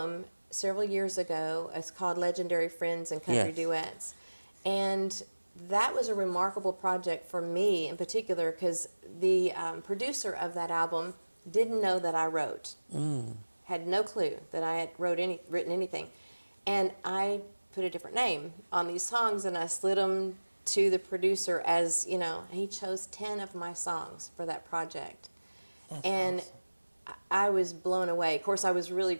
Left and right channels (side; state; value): both; inverted; correlation -1.00